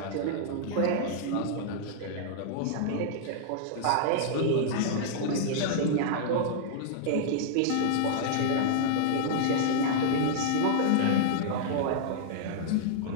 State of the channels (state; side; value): different; both; correlation -0.02